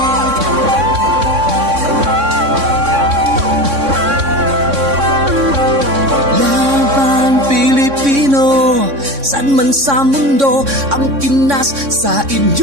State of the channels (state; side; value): late; left; 3.6 ms